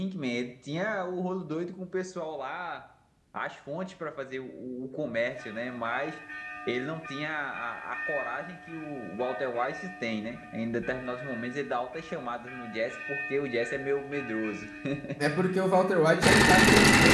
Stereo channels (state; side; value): identical; both; correlation 1.00